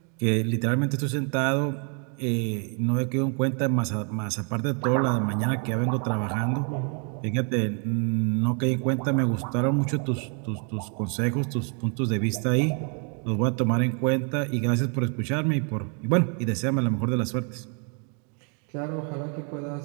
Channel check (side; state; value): left; quieter; 39.8 dB